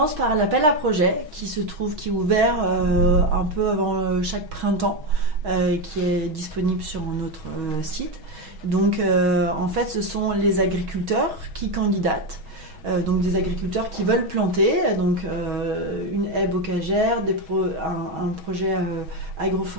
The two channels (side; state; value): left; late; 6.2 ms